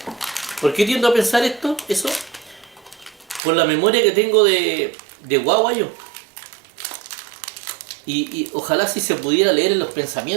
¿Por qué tiendo a pensar eso? Por la memoria que tengo de guagua yo. Y ojalá si se pudiera leer en los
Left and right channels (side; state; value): left; drops out; at 3.4 s